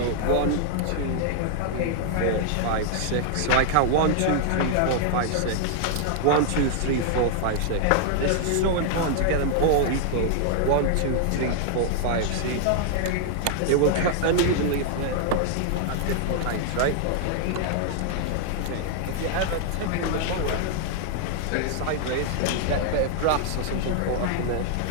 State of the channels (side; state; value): both; different; correlation 0.00